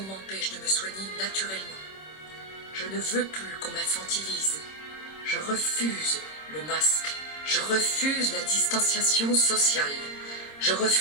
m'empêche de me soigner naturellement. Je ne veux plus qu'on m'infantilise. Je refuse le masque. Je refuse la distanciation sociale. Je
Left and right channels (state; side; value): late; right; 26 ms